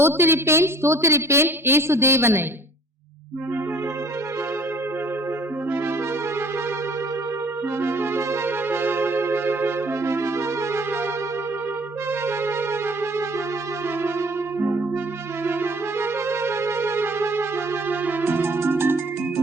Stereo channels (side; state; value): both; normal; correlation 0.54